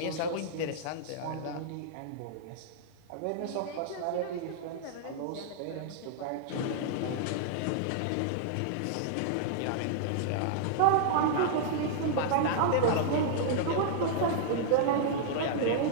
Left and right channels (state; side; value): different; both; correlation -0.01